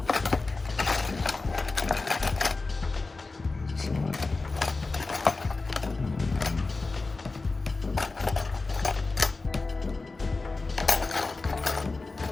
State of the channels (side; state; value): right; quieter; 3.6 dB